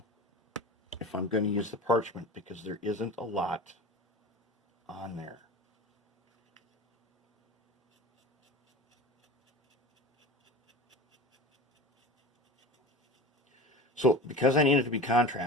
if I'm going to use the parchment, because there isn't a lot on there. So because I need it to be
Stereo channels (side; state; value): both; normal; correlation 0.33